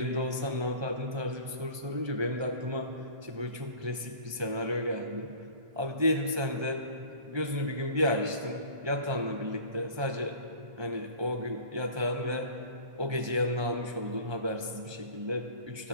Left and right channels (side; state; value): left; late; 1.3 ms